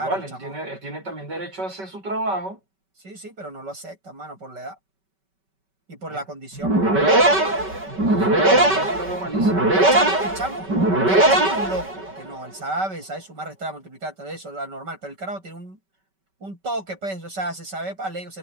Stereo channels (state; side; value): late; left; 5.2 ms